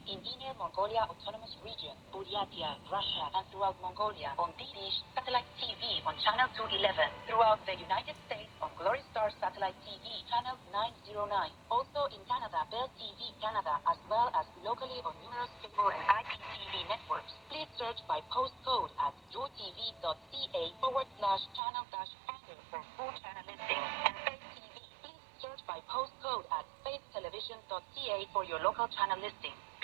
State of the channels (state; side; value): drops out; left; at 21.6 s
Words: in Inner Mongolia Autonomous Region, Buryatia, Russia, and throughout Mongolia on DDish Satellite TV on Channel 211, throughout the United States on Glory Star Satellite TV, Channel 909, also in Canada, Bell TV Canada, as well as locally on numerous cable and IPTV networks. Please search by postcode at joetv.ca/channel-finder for full channel listings, and Faith TV. Please search by postcode at faithtelevision.ca for your local channel listing.